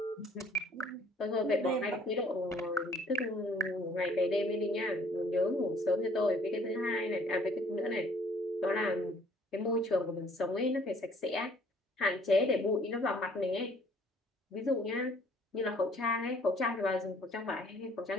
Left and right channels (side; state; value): both; normal; correlation 0.58